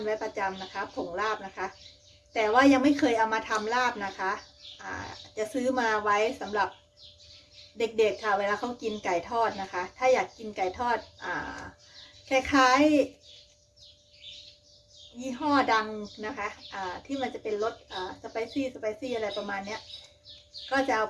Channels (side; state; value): both; identical; correlation 1.00